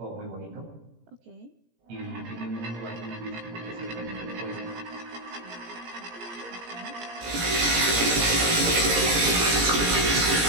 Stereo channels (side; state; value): left; late; 17 ms